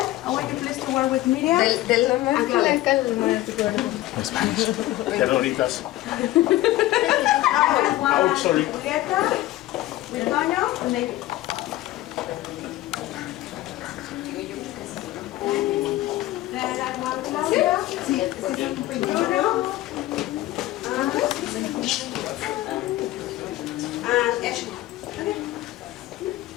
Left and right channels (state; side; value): quieter; right; 16.2 dB